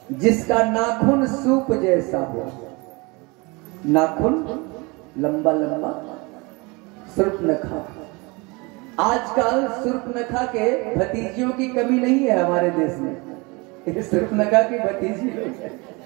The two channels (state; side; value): quieter; left; 26.8 dB